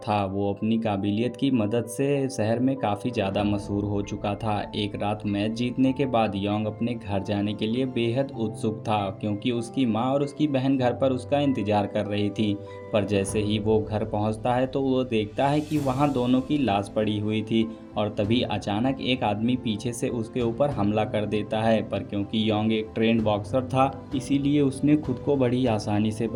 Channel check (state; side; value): identical; both; correlation 1.00